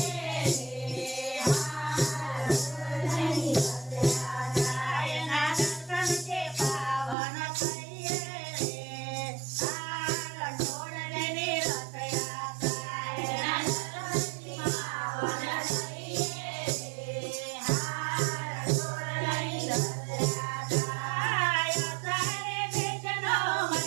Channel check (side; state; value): left; drops out; at 7.2 s